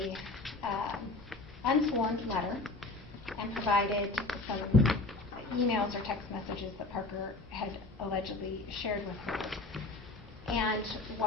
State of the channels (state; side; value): quieter; right; 3.2 dB